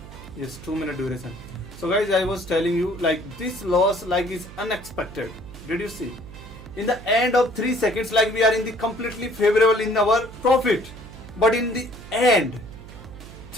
Yes, 2-minute duration. So guys, I was telling you like this loss like is unexpected. Did you see? In the end of 3 seconds, like we are in the completely favorable in our profit. But in the end,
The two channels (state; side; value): noise; right; hum, 16 dB below the sound